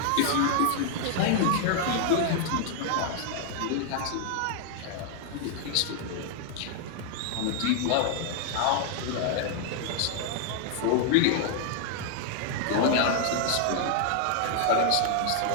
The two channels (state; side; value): different; both; correlation 0.00